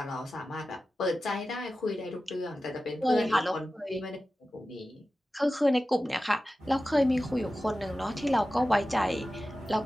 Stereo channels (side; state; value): both; normal; correlation 0.94